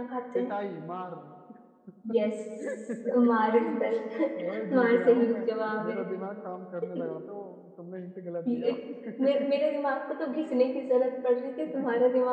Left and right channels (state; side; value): identical; both; correlation 1.00